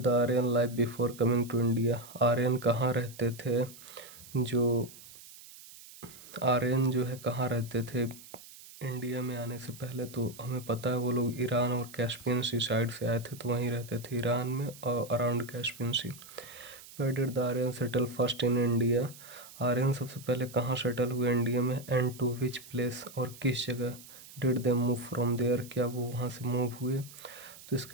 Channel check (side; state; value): right; noise; hiss, 18 dB below the sound